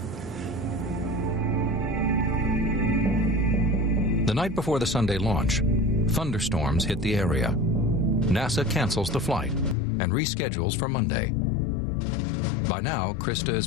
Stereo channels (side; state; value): right; drops out; at 9.8 s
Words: The night before the Sunday launch, thunderstorms hit the area. NASA cancels the flight and reschedules for Monday. By now, Krista is